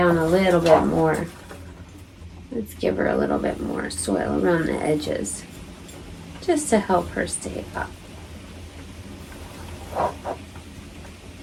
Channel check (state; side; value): identical; both; correlation 1.00